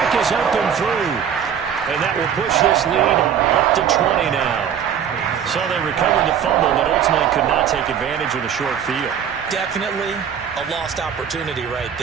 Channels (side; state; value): left; quieter; 8.4 dB